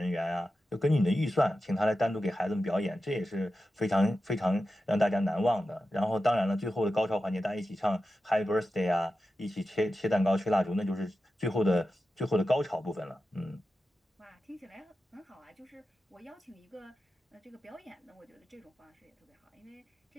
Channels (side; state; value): both; normal; correlation 0.92